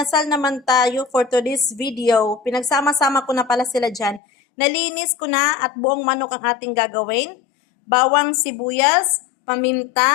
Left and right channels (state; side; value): drops out; right; at 4.2 s